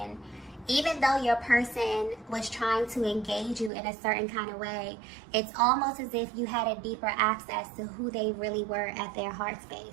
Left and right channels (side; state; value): left; drops out; at 3.7 s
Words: Even though your person was trying to engage you in a certain kind of way, it's almost as if you had a deeper access to who they really were at their heart